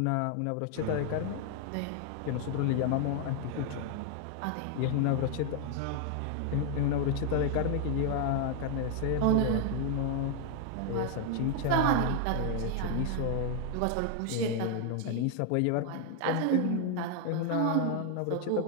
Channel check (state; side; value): different; both; correlation 0.00